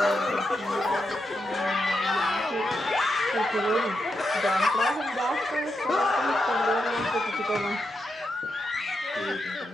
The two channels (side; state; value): both; normal; correlation 0.85